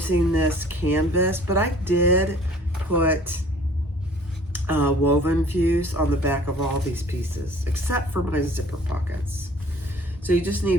this canvas, but I did put woven fuse on the back of all these pieces, except for my zipper pockets. So you just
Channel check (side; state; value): both; normal; correlation 0.52